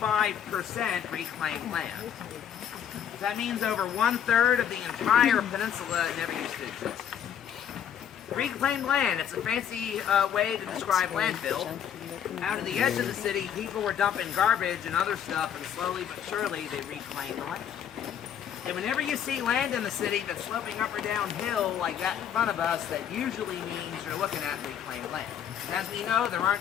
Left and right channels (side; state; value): right; quieter; 9.0 dB